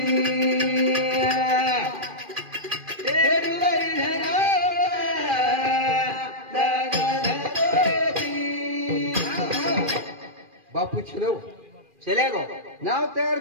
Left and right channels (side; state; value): left; late; 2.4 ms